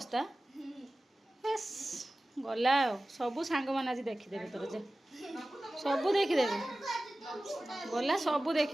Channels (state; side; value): normal; both; correlation 0.97